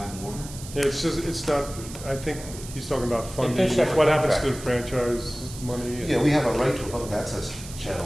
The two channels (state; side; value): noise; right; hiss, 14 dB below the sound